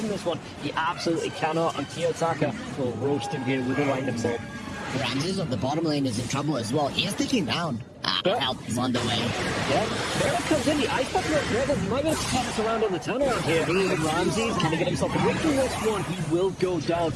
this one? He absolutely cannot, and Kiyotaka will roast him here with a lightning bolt. Ramses on the bottom lane is in trouble as well. He is taking down. Help is on the way. Yeah, there it comes in. The ice bucket red. He might be able to pop us around on the turnaround here. Ramses, can he get himself away from this one? He will go down.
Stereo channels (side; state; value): both; identical; correlation 1.00